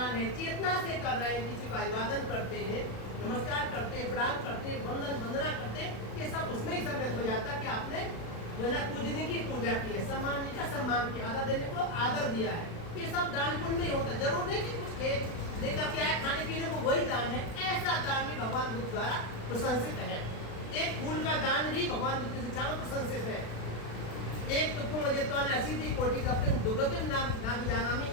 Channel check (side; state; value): right; late; 36 ms